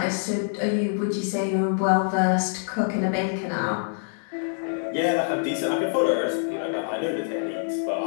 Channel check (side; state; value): right; silent; 61 dB below the other